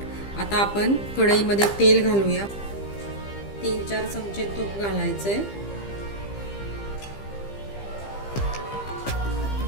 आता आपण कढईमध्ये तेल घालूया। 3-4 चमचे तूप घालायचे।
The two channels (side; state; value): right; late; 15 ms